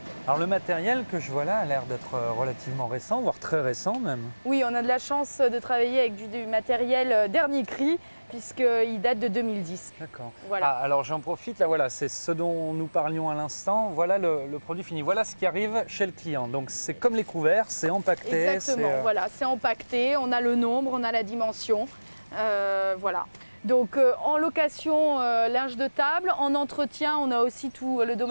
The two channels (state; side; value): inverted; both; correlation -1.00